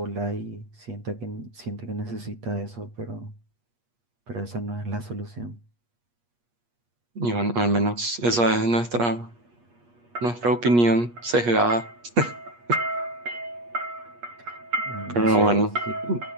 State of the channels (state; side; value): late; left; 8.4 ms